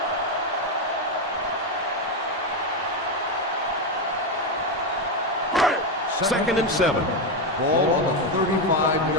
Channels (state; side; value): normal; both; correlation 0.08